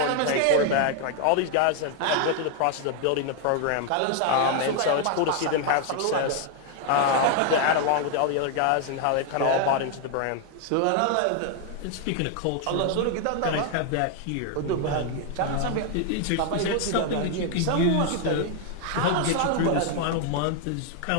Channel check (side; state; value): both; different; correlation 0.00